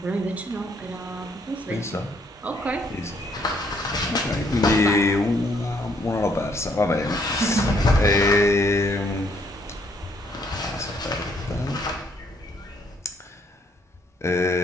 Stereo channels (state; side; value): normal; both; correlation 0.68